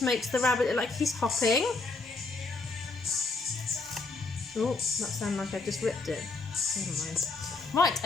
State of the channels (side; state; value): right; quieter; 3.8 dB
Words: makes the rabbit look like he's hopping. Oh, that sounded like I just ripped it. Never mind. Right,